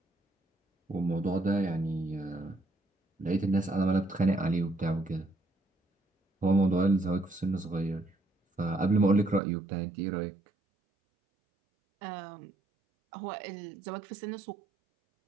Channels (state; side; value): drops out; left; at 9.4 s